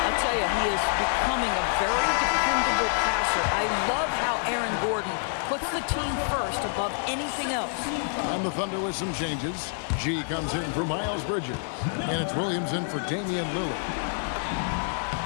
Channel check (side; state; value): right; silent; digital silence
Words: I'll tell you, he is becoming a very dependable passer. I love how Aaron Gordon puts the team first above anything else. And the Thunder with some changes. G comes in for Miles Bridges. And it's Williams in for Damian Lillard.